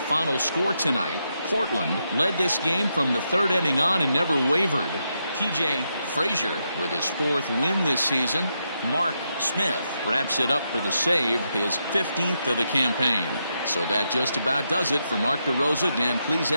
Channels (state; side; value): inverted; both; correlation -0.83